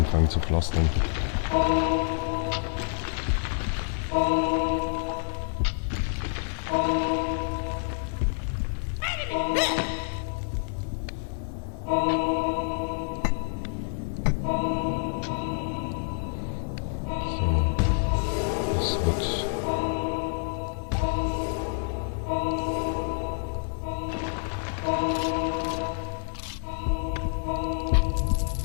zu pflastern. So, das wird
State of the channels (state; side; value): silent; right; digital silence